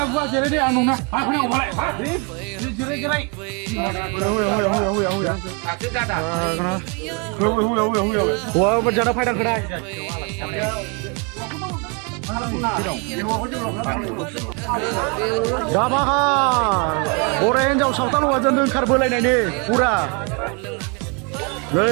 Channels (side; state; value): left; quieter; 33.4 dB